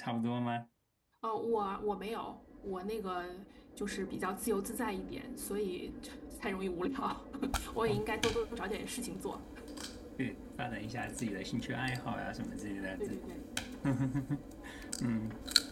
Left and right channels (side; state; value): both; identical; correlation 1.00